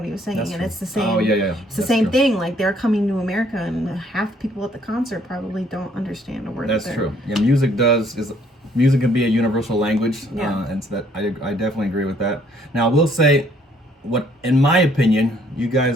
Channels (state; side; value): normal; both; correlation 0.64